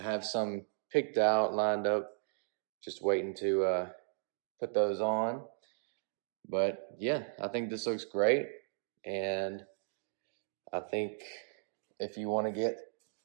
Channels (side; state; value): left; silent; digital silence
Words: have some picked out, lined up, just waiting to put those on. But yeah, I think this looks great, and I think if you want to get